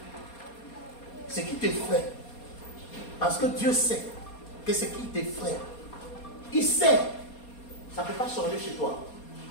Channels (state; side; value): late; right; 4.2 ms